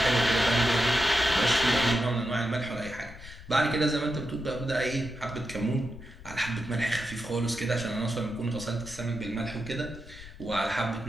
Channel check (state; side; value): noise; left; rumble, 16 dB below the sound